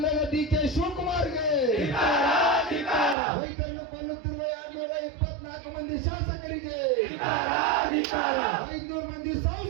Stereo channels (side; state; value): left; drops out; at 3.2 s